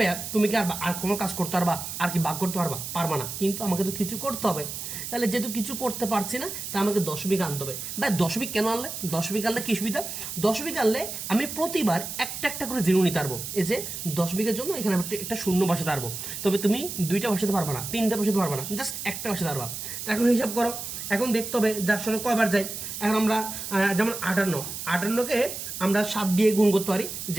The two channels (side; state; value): right; noise; hiss, 7 dB below the sound